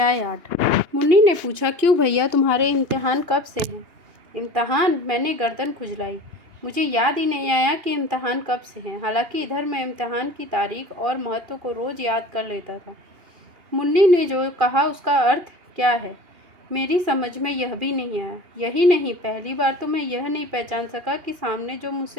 8। मुन्नी ने पूछा, क्यों भैया, तुम्हारे इम्तिहान कब से हैं? इम्तिहान? मैंने गर्दन खुजलाई। मुझे याद ही नहीं आया कि इम्तिहान कब से हैं। हालांकि इधर मैं इम्तिहान की तारीख और महत्व को रोज़ याद कर लेता था। मुन्नी ने जो कहा उसका अर्थ क्या है, मेरी समझ में यह भी नहीं आया। यही नहीं, पहली बार तो मैं यह नहीं पहचान सका कि सामने जो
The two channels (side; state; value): left; late; 2.8 ms